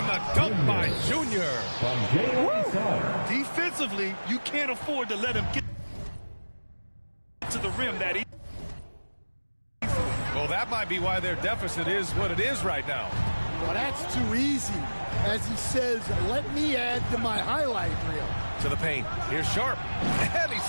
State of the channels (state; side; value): inverted; both; correlation -1.00